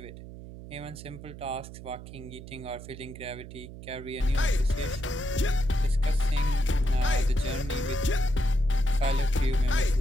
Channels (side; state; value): right; noise; hum, 13 dB below the sound